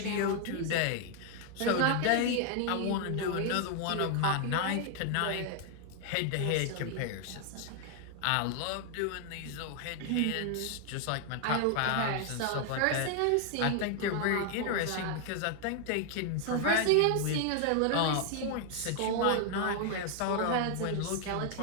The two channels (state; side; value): different; both; correlation 0.00